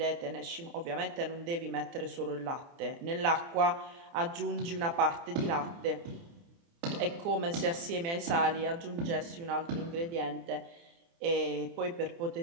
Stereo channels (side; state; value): left; late; 29 ms